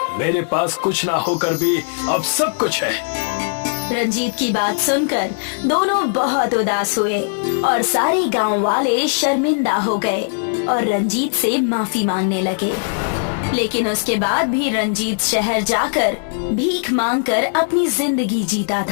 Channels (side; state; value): right; silent; 67 dB below the other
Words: मेरे पास कुछ ना होकर भी अब सब कुछ है। रंजीत की बात सुनकर दोनों बहुत उदास हुए और सारे गांव वाले शर्मिंदा हो गए और रंजीत से माफी मांगने लगे। लेकिन उसके बाद भी रंजीत शहर जाकर भीख मांगकर अपनी जिंदगी जीता